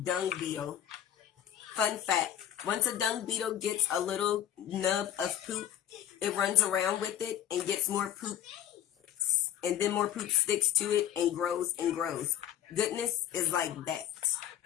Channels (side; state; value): right; quieter; 10.8 dB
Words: beetle. Fun fact, once a dung beetle gets a little nub of poop, it runs around with it and gets more poop. And then more poop sticks to it and grows and grows. Goodness is like that.